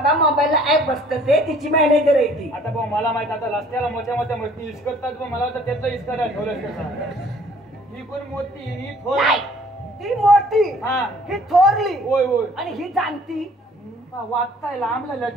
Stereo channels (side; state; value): both; normal; correlation 0.55